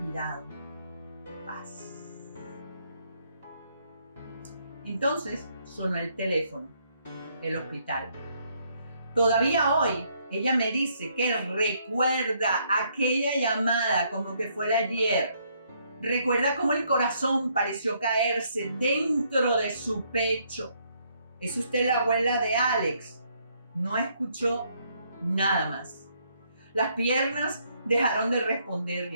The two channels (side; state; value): both; inverted; correlation -0.71